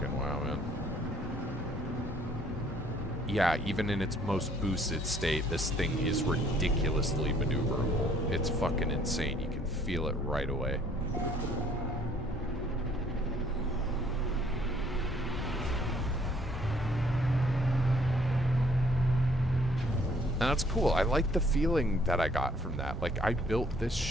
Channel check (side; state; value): both; normal; correlation 0.62